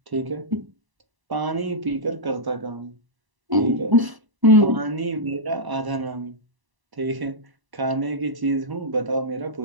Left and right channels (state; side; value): late; left; 1.0 ms